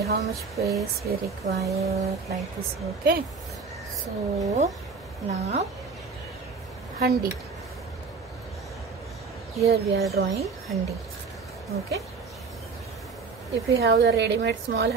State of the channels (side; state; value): left; quieter; 4.8 dB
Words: much space we require, like this. Okay. So now handi. Here we are drawing handi. Okay. If you have the ready-made small